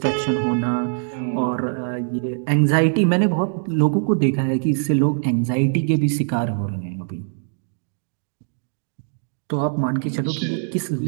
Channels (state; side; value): silent; left; digital silence